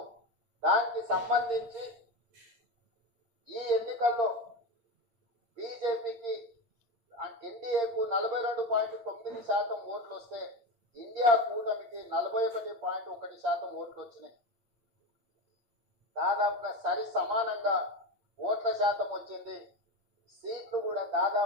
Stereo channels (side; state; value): left; late; 8.7 ms